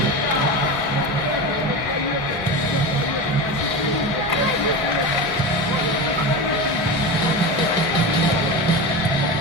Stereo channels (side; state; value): both; normal; correlation 0.24